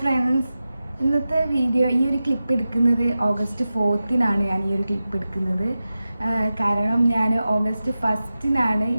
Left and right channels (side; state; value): both; inverted; correlation -0.94